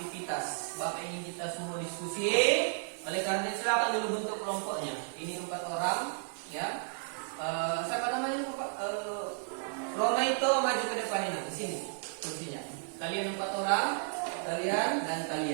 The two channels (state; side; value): silent; left; digital silence